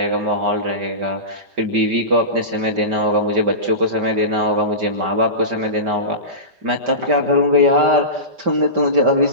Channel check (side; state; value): left; late; 5.1 ms